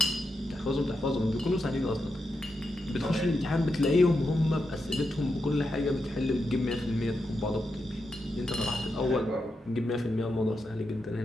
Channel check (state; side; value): normal; both; correlation 0.86